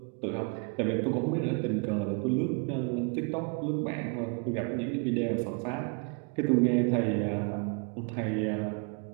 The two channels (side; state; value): left; quieter; 36.4 dB